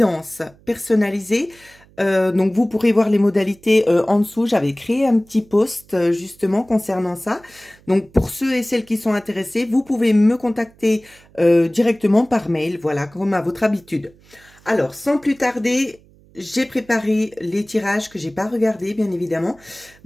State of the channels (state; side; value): noise; right; hum, 28 dB below the sound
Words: personnalisée. Donc vous pourrez voir les modalités en dessous. J'avais créé un petit post justement concernant ça. Donc pour ceux et celles qui sont intéressés, vous pouvez me contacter directement par mail, voilà, comme à votre habitude. Alors sans plus tarder, j'ai préparé les tirages que j'ai pas regardés bien évidemment.